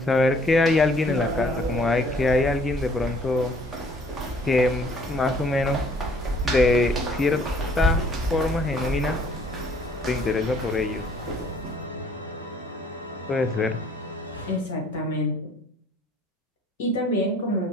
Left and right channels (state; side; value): normal; both; correlation 0.59